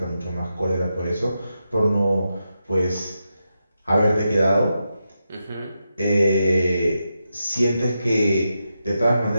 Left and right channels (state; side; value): inverted; both; correlation -0.87